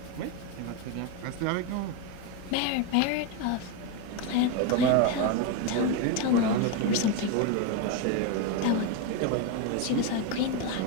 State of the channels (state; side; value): different; both; correlation 0.02